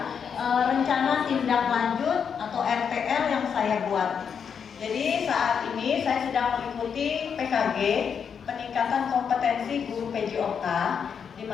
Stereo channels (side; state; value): right; quieter; 7.0 dB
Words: rencana tindak lanjut atau RTL yang saya buat. Jadi saat ini saya sedang mengikuti PKG, peningkatan kompetensi guru PJOK, di